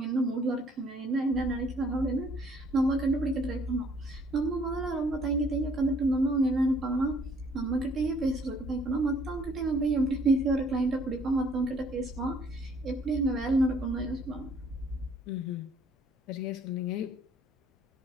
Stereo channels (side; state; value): both; normal; correlation 0.62